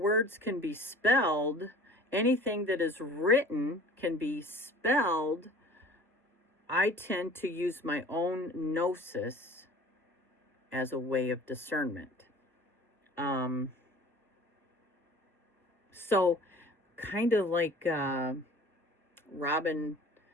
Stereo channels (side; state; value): both; normal; correlation 0.45